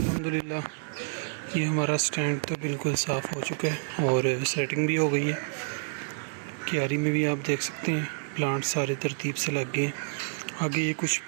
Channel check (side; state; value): left; silent; digital silence